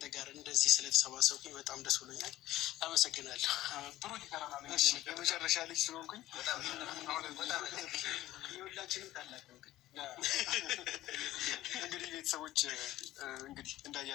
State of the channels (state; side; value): quieter; right; 15.3 dB